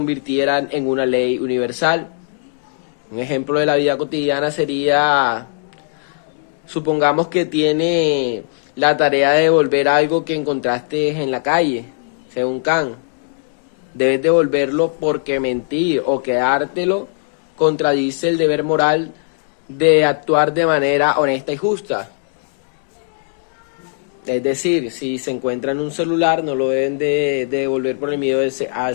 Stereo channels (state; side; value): silent; right; 60 dB below the other